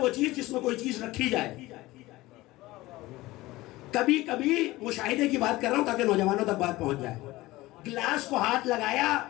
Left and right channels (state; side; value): quieter; right; 18.8 dB